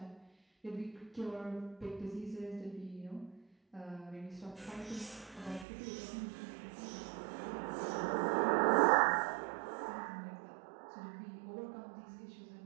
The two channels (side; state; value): left; drops out; at 5.7 s